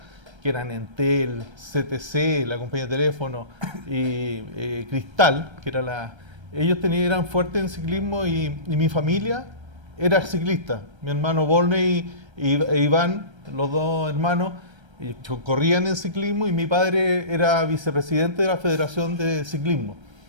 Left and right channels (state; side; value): late; left; 1.3 ms